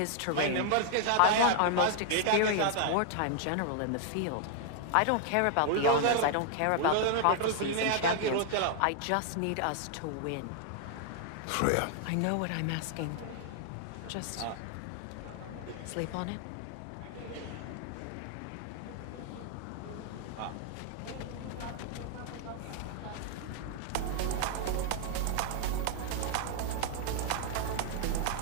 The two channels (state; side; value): different; both; correlation 0.00